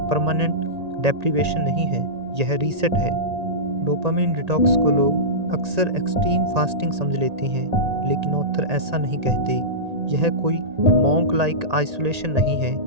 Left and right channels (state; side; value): late; left; 1.8 ms